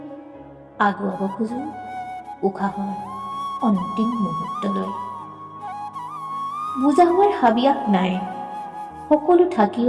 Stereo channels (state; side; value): identical; both; correlation 1.00